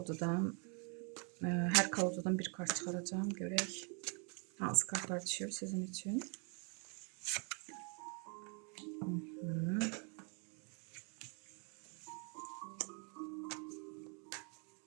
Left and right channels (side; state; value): left; quieter; 37.2 dB